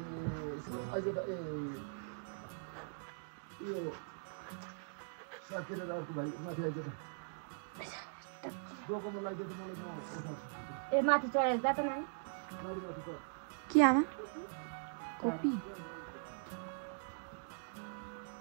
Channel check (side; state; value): left; silent; digital silence